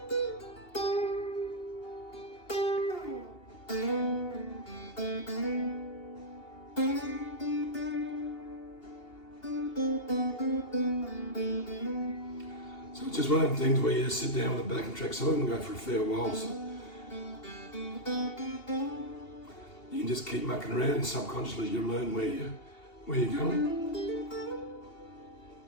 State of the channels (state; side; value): late; right; 2.8 ms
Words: So it's just one of them things where you just sit down with a backing track. Some of them go for a fair while, so you can just keep mucking around and subconsciously you learn where you're going.